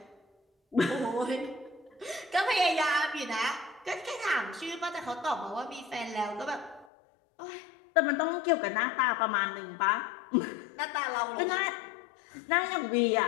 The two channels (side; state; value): right; drops out; at 6.9 s